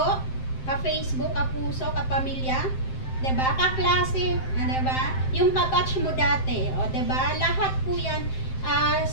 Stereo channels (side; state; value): right; late; 7.7 ms